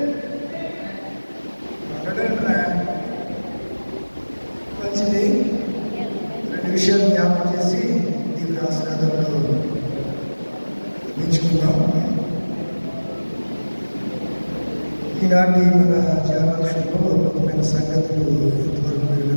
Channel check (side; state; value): both; inverted; correlation -1.00